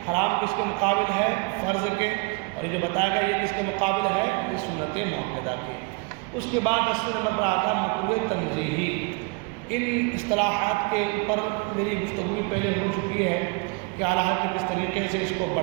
حرام کس کے مقابل ہے؟ فرض کے۔ اور یہ جو بتایا گیا یہ کس کے مقابل ہے؟ یہ سنت مؤکدہ کے۔ اس کے بعد 10 نمبر پر آتا ہے مکروہ تنزیہی۔ ان اصطلاحات کے اوپر میری گفتگو پہلے ہو چکی ہے، کہ اعلیٰ حضرت نے کس طریقے سے اس کو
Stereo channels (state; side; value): quieter; left; 28.1 dB